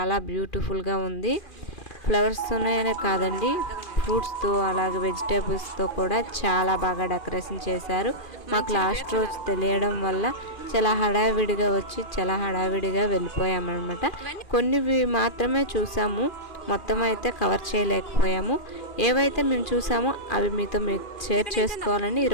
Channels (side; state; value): right; late; 2.4 ms